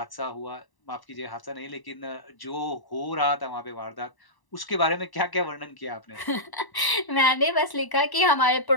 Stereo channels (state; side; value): late; right; 1.0 ms